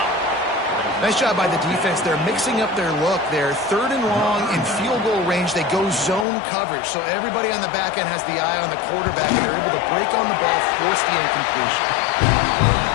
Nice job by the defense. They're mixing up their look. They're 3rd and long in field goal range. They go zone coverage, so everybody on the back end has the eye on the quarterback, and they're able to break on the ball, force the incompletion.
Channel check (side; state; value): right; drops out; at 6.2 s